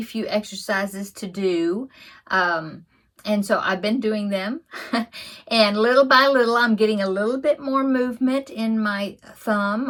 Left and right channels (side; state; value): both; identical; correlation 1.00